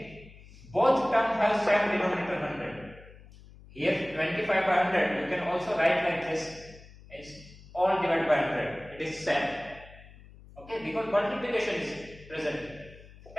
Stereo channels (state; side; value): noise; left; hum, 21 dB below the sound